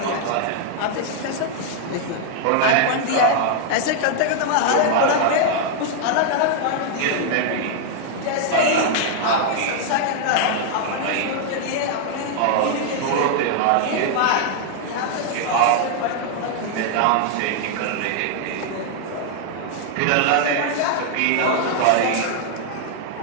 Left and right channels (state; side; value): different; both; correlation 0.00